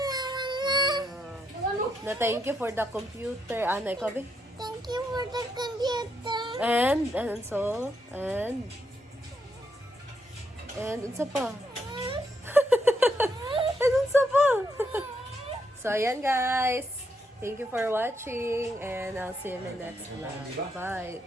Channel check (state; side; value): normal; both; correlation 0.78